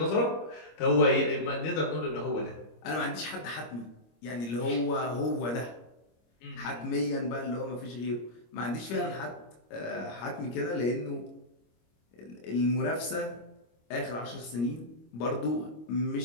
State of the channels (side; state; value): right; late; 25 ms